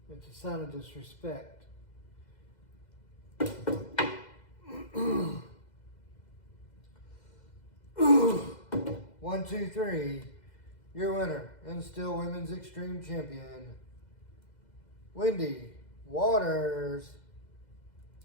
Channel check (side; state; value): right; late; 2.0 ms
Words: It's a sign of disrespect. 1, 2, 3. Your winner and still women's extreme champion, Wendy Waters.